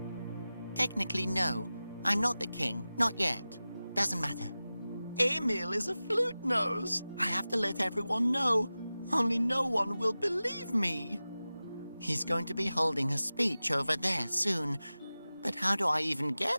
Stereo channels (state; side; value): inverted; both; correlation -0.96